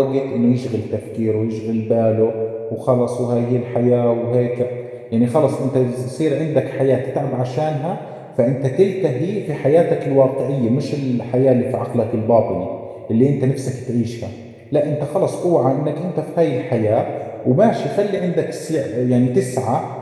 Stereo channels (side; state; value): both; identical; correlation 1.00